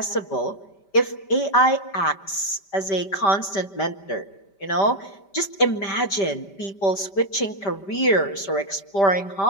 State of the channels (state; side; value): late; right; 5.1 ms